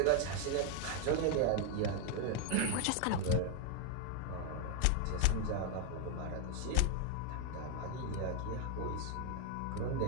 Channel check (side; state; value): both; different; correlation 0.00